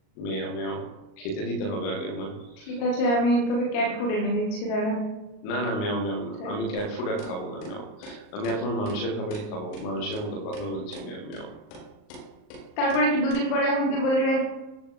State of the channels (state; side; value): late; right; 38 ms